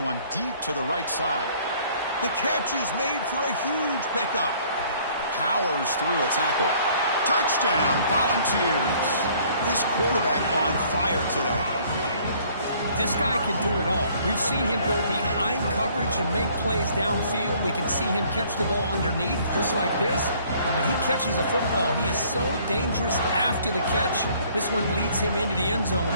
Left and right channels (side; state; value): both; inverted; correlation -0.58